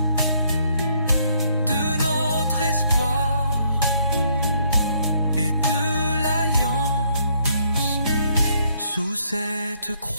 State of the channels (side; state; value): both; inverted; correlation -0.70